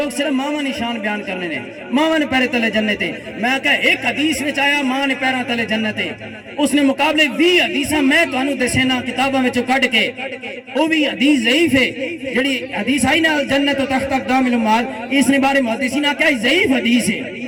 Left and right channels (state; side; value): identical; both; correlation 1.00